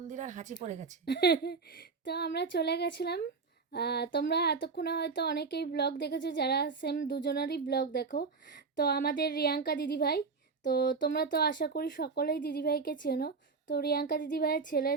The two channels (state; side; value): quieter; left; 4.7 dB